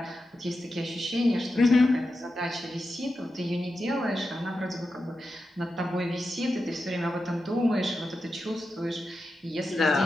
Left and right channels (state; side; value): normal; both; correlation 0.90